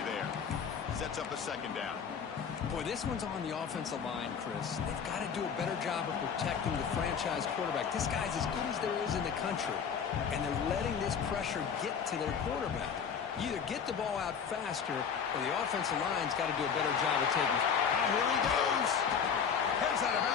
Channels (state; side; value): quieter; right; 6.9 dB